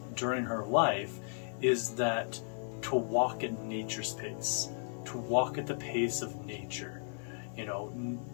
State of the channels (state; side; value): silent; right; digital silence